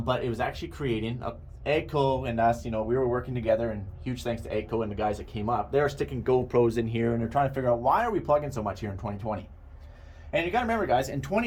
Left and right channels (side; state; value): both; identical; correlation 1.00